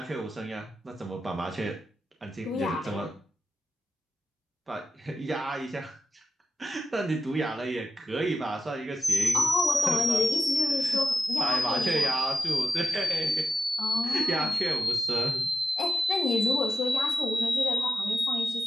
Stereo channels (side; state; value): both; normal; correlation 0.90